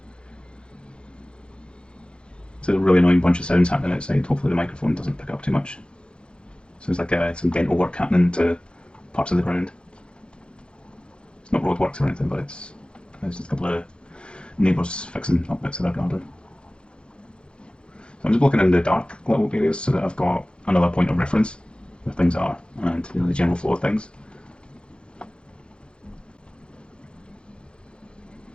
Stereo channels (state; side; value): late; right; 0.054 ms